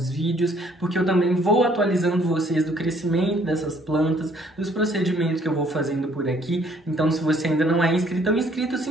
vídeos, porque eu também vou atualizando vocês do crescimento dessas plantas, dos procedimentos que eu vou fazendo por aqui. Então, se você ainda não é inscrito ou inscrito, se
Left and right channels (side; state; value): both; normal; correlation 0.63